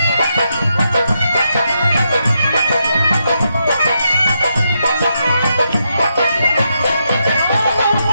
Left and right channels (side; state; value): both; inverted; correlation -0.82